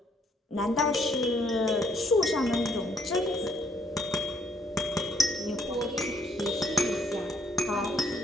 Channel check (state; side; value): normal; both; correlation 0.69